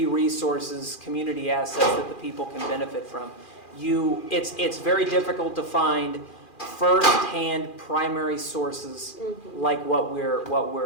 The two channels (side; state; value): right; late; 2.4 ms